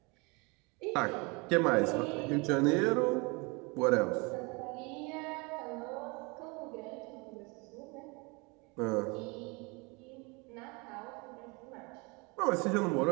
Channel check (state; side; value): quieter; left; 28.7 dB